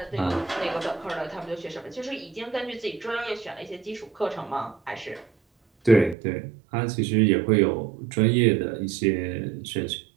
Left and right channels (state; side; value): drops out; left; at 6.2 s